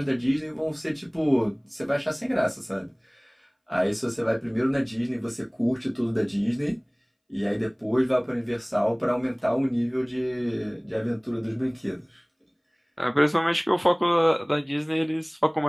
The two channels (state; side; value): identical; both; correlation 1.00